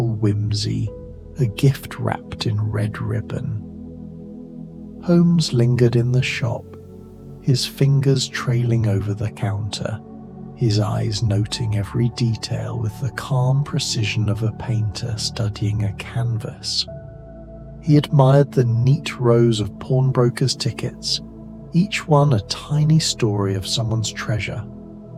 whimsy, a gift wrapped in red ribbon. Holmes lingered in the shop, his fingers trailing over the counter, his eyes noting every detail with the calm precision of a painter studying a canvas. He admired the neat rows of pawnbrokers' tickets, each one a tiny story of someone's treasure,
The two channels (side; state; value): both; identical; correlation 1.00